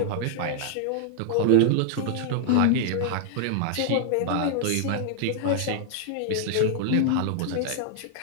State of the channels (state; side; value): different; both; correlation -0.01